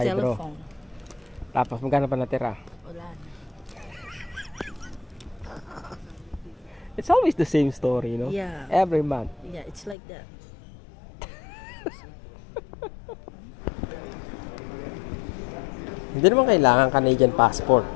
Telephone. Tapos magkano pa natira? Wala na. It's always the same story, no? Yeah. Every month. Yeah, it's like that. Hindi naman kailangan Canadian passport.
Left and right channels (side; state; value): right; drops out; at 10.0 s